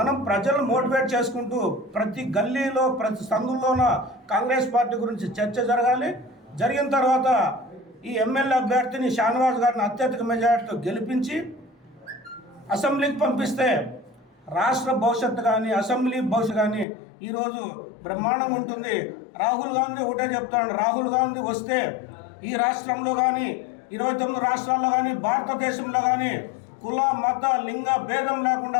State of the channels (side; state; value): right; drops out; at 16.9 s